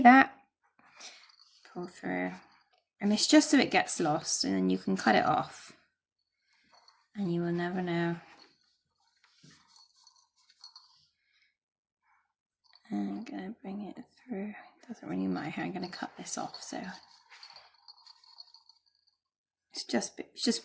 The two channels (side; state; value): both; identical; correlation 1.00